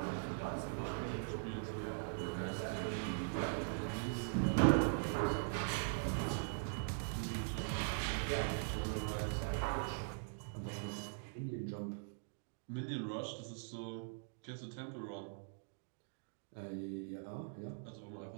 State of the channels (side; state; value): left; silent; digital silence